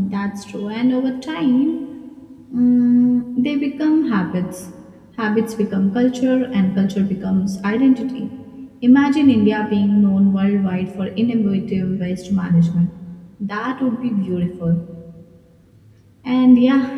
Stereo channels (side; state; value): both; identical; correlation 1.00